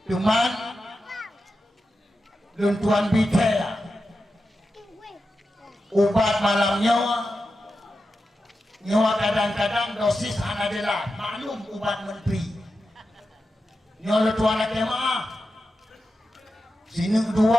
Cuman tuan bicara ubat malamnya nyawa kadang-kadang dosis adalah maklum ubat menteri nyawa tuan lagi maaf sini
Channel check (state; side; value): normal; both; correlation 0.90